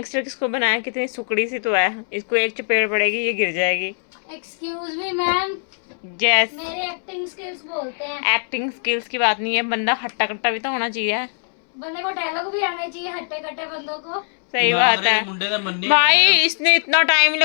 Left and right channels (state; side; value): silent; right; 63 dB below the other